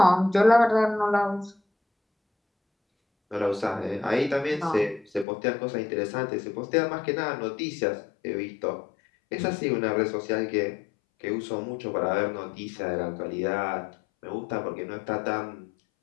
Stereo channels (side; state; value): right; drops out; at 5.2 s